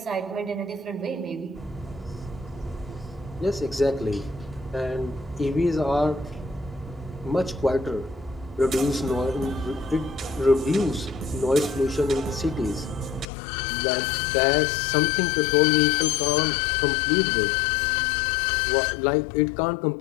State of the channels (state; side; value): drops out; right; at 13.2 s